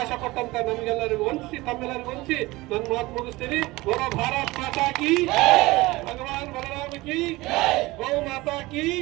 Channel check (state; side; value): quieter; left; 20.7 dB